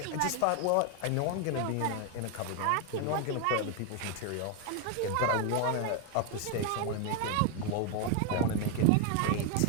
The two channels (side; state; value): both; different; correlation 0.01